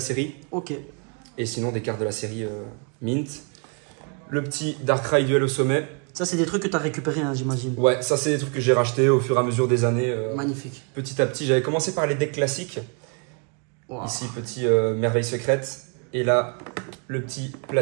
Ok. Et sinon des cartes de la série Mint. Le petit Darkrai Duel au sommet. Ça, c'est des trucs que tu as récupérés, hein, j'imagine. Ouais, ça, c'est des trucs que j'ai rachetés au fur et à mesure des années. Magnifique. Petit à petit, j'avais commencé par les decks classiques. Wow. Ici, petit Merveille Secrète. Et là, le petit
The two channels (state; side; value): quieter; left; 36.7 dB